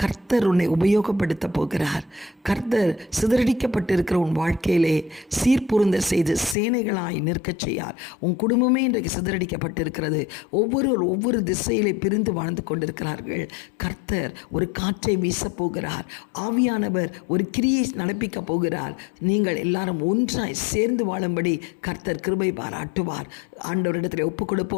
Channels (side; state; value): right; drops out; at 6.6 s